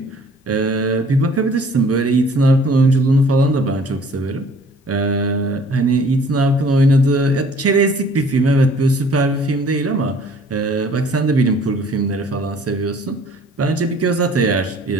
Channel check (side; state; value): both; normal; correlation 0.54